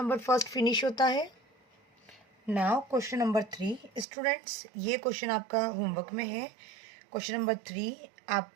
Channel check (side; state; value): left; drops out; at 4.0 s